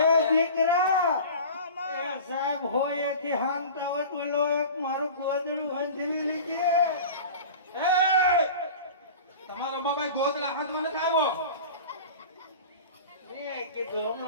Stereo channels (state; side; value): inverted; both; correlation -0.37